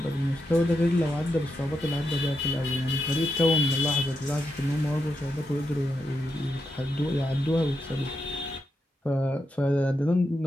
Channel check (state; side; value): normal; both; correlation 0.84